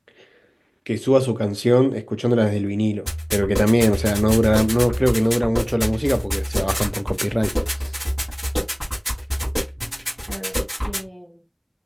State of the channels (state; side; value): identical; both; correlation 1.00